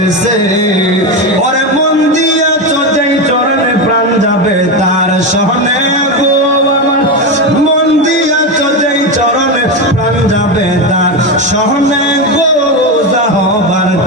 ওরে মন দিয়াছ যেই চরণে প্রাণ যাবে তার শোনে গো আমার, মন দিয়াছ যেই চরণে প্রাণ যাবে তার শোনে গো যাহবার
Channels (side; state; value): both; normal; correlation 0.14